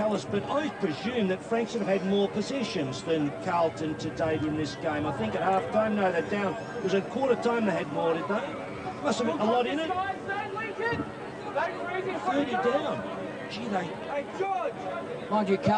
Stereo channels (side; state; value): both; identical; correlation 1.00